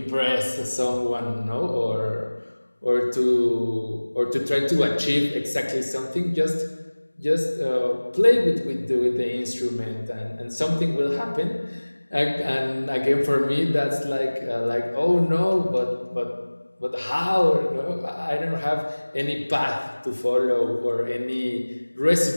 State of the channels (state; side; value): inverted; both; correlation -1.00